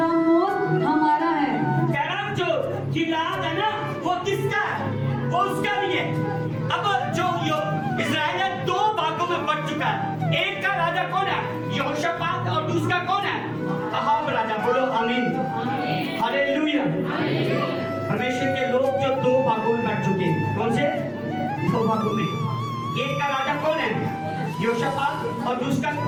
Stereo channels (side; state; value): both; identical; correlation 1.00